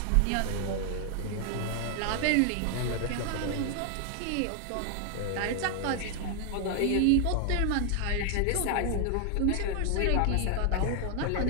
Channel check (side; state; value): both; different; correlation 0.00